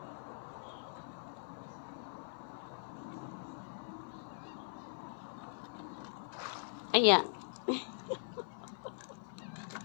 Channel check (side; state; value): right; silent; 50 dB below the other